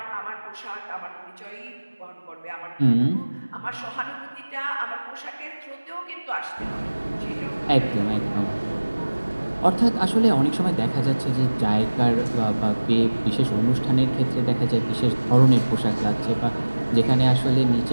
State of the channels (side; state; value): both; inverted; correlation -1.00